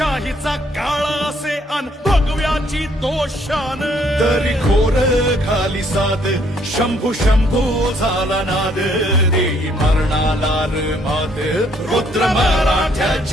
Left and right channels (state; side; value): normal; both; correlation 0.66